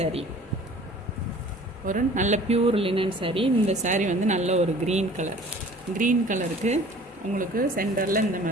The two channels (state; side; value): normal; both; correlation 0.48